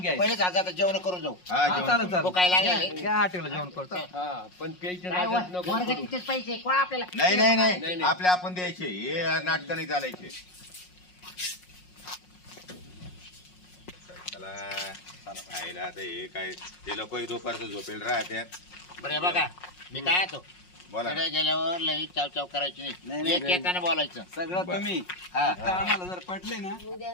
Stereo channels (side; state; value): right; late; 5.5 ms